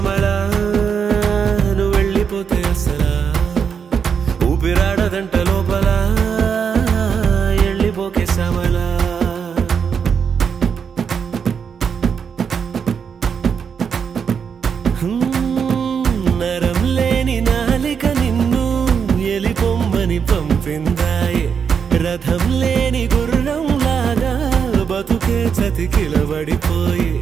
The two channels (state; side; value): quieter; left; 6.8 dB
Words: నువ్వు వెళ్ళిపోతే అసలా ఊపిరాడదంట లోపల ఎళ్ళిపోకే శ్యామలా నరం లేని నాలిక నిన్ను ఎలిపొమ్మని పంపిందాయే రథం లేని గుర్రం లాగా బతుకే చతికిలబడిపోయి